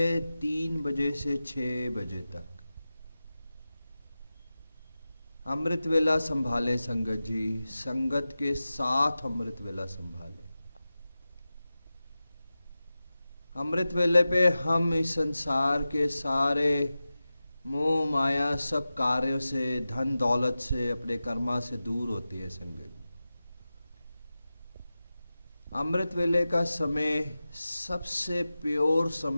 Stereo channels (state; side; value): inverted; both; correlation -0.95